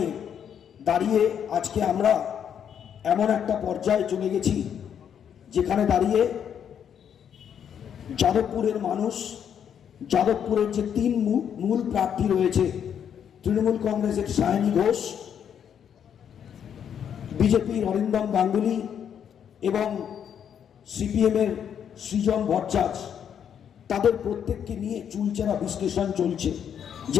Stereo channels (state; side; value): quieter; right; 8.5 dB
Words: দাঁড়িয়ে আজকে আমরা এমন একটা পর্যায়ে চলে গেছি যেখানে দাঁড়িয়ে যাদবপুরের মানুষ, যাদবপুরের যে তিন মূল প্রার্থী রয়েছে, তৃণমূল কংগ্রেসের সায়নী ঘোষ, বিজেপির অরিন্দম গাঙ্গুলি এবং সিপিএমের সৃজন ভট্টাচার্য, তাদের প্রত্যেককে নিয়ে চুলচেরা বিশ্লেষণ চলছে